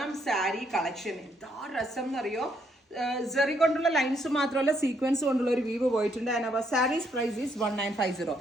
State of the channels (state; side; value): normal; both; correlation 0.73